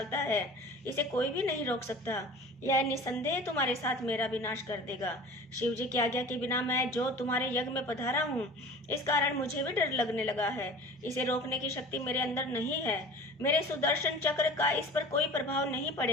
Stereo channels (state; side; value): normal; both; correlation 0.40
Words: है। इसे कोई भी नहीं रोक सकता। यह निसंदेह तुम्हारे साथ मेरा भी नाश कर देगा। शिव जी की आज्ञा के बिना मैं जो तुम्हारे यज्ञ में पधारा हूँ, इस कारण मुझे भी डर लगने लगा है। इसे रोकने की शक्ति मेरे अंदर नहीं है। मेरे सुदर्शन चक्र का इस पर कोई प्रभाव नहीं